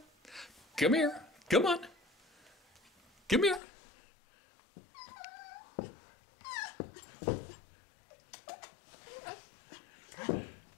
Come here. Come on. Come here.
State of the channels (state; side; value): drops out; right; at 3.6 s